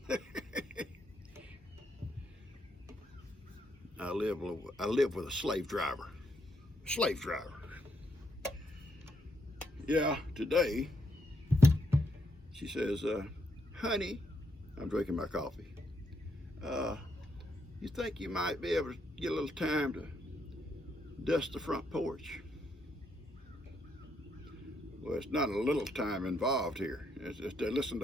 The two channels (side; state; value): both; normal; correlation 0.77